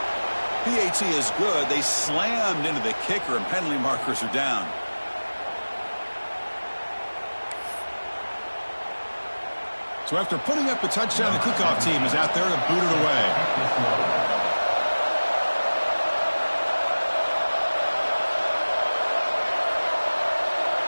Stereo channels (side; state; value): both; inverted; correlation -1.00